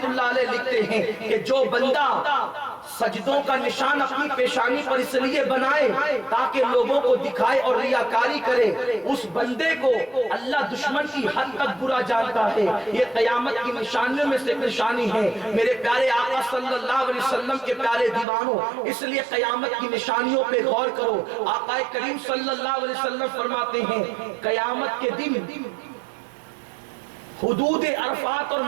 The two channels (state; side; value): drops out; left; at 18.2 s